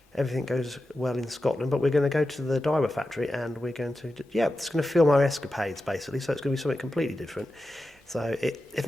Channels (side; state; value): both; normal; correlation 0.92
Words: everything goes well in Scotland. But we're going to go to the diver factory and we're going to, it's going to film our escapades, basically. So it's going to be something completely different. So if